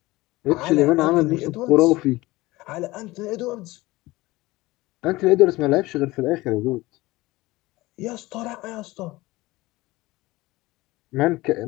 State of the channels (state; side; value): quieter; right; 19.9 dB